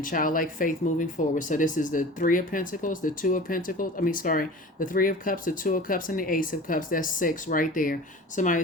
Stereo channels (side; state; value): both; normal; correlation 0.38